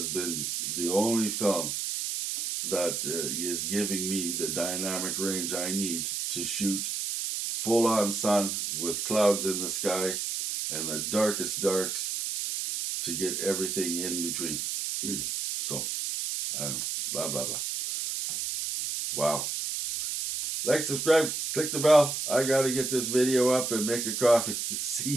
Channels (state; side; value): noise; right; hiss, 2 dB below the sound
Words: been the only film that is giving me the dynamic range I need to shoot full on sun with clouds in the sky and the darkest darks to get everything in between. So, I don't know, blah, blah, blah. Wow. Like, subscribe, click the bell. I gotta get this video up and make a coffee. See